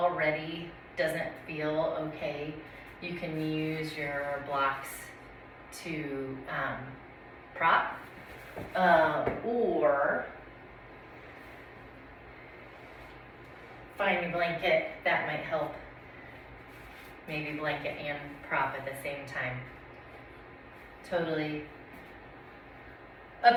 doesn't feel okay, you can use your blocks to prop or find a blanket. That might help. Maybe blanket and prop at the same time. Totally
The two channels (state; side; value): identical; both; correlation 1.00